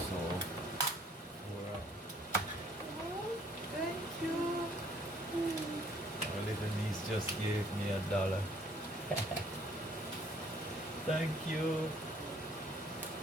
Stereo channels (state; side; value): normal; both; correlation 0.60